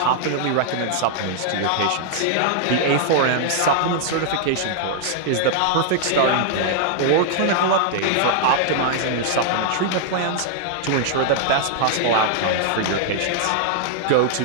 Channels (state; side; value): different; both; correlation -0.01